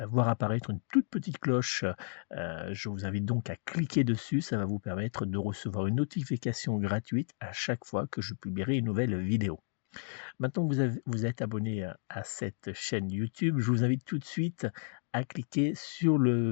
voir apparaître une toute petite cloche. Je vous invite donc à cliquer dessus. Ça va vous permettre de recevoir une notification gratuite à chaque fois que je publierai une nouvelle vidéo. Maintenant que vous êtes abonné à cette chaîne YouTube, je vous invite tout de suite à cliquer sur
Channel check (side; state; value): right; silent; 56 dB below the other